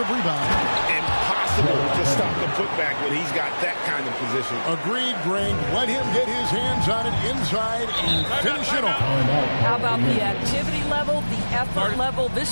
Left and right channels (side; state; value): both; inverted; correlation -1.00